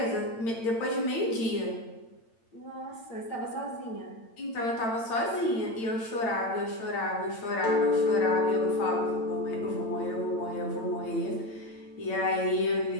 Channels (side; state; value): right; late; 8.9 ms